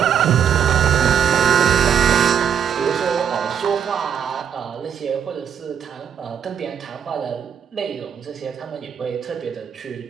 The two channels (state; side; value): quieter; left; 8.2 dB